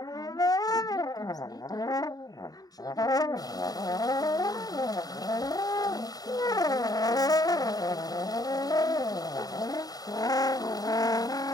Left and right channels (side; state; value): right; late; 0.18 ms